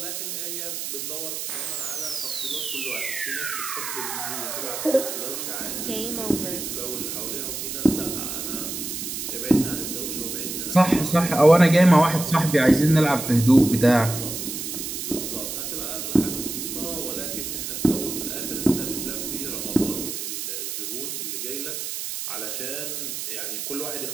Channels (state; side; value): noise; right; hiss, 5 dB below the sound